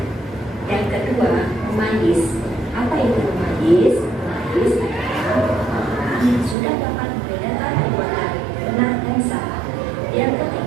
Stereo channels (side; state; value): left; drops out; at 6.6 s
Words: Yang kedua, memayis. Apa itu memayis? Memayis adalah orang yang sudah dapat membedakan perbuatan benar dan salah. Yang